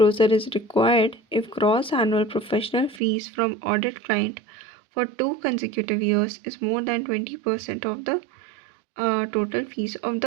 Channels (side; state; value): left; drops out; at 3.0 s